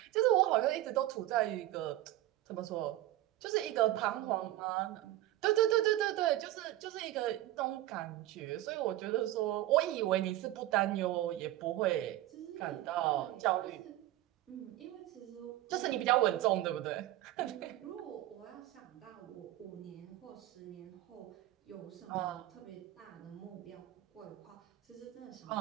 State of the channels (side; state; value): left; quieter; 14.8 dB